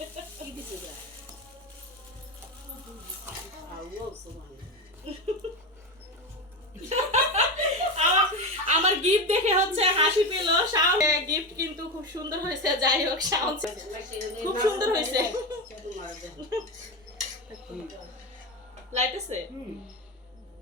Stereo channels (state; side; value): normal; both; correlation 0.18